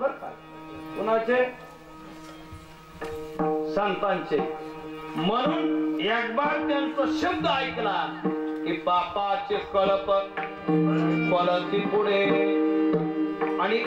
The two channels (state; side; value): identical; both; correlation 1.00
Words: का. कुणाचे? संतांचे. म्हणून एक बार त्यांचा शब्द ऐकला की पापाचे कळप पळती पुढे, आणि